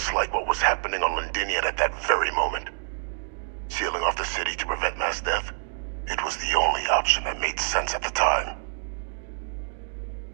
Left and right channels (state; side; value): silent; left; digital silence